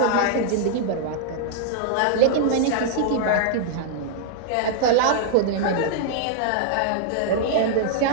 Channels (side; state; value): both; different; correlation -0.01